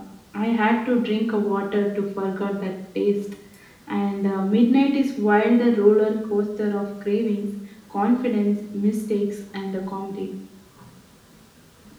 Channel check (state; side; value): identical; both; correlation 1.00